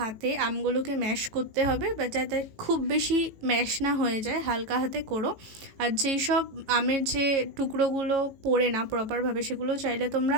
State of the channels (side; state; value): left; late; 18 ms